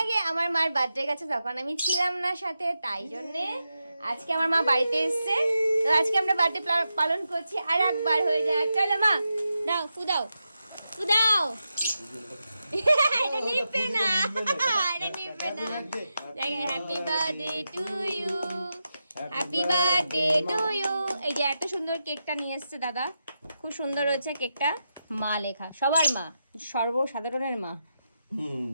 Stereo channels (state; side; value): inverted; both; correlation -0.88